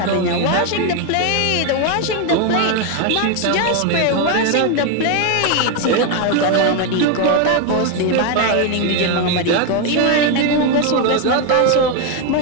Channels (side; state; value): both; different; correlation 0.02